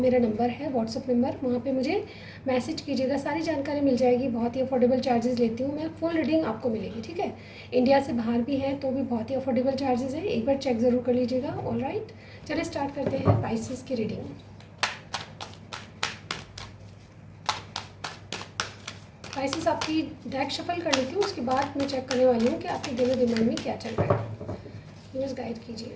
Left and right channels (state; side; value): identical; both; correlation 1.00